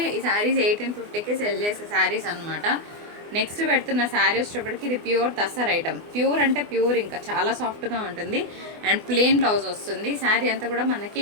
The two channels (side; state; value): left; late; 24 ms